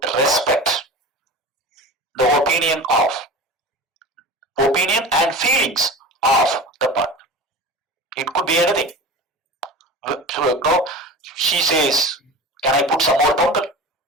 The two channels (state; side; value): normal; both; correlation 0.34